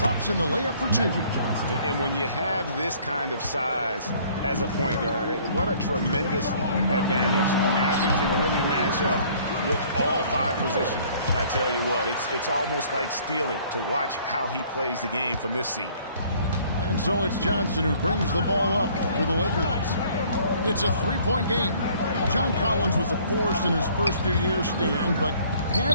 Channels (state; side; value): inverted; both; correlation -0.57